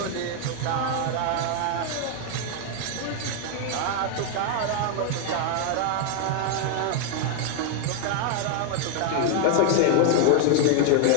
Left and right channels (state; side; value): different; both; correlation 0.00